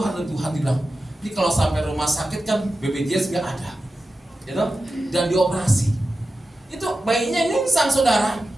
dan Tuhan bilang, ini kalau sampai rumah sakit kan BPJS nggak ada, gitu? Dan dioperasi. Itu bayinya nyungsang, saudara.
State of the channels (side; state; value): both; normal; correlation 0.92